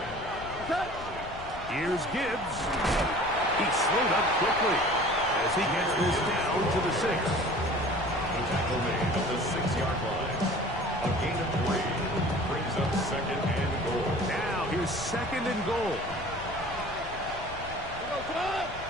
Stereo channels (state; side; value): noise; left; rumble, 13 dB below the sound